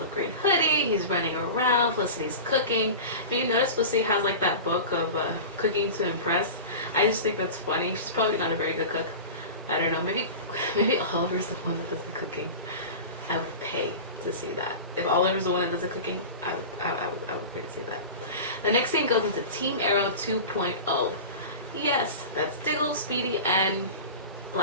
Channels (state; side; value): inverted; both; correlation -0.31